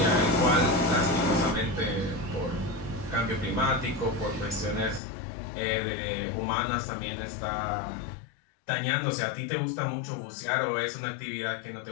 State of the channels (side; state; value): right; drops out; at 5.0 s